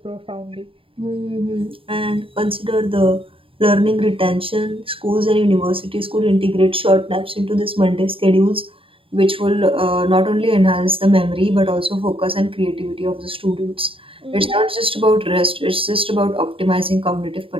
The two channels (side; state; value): left; late; 0.26 ms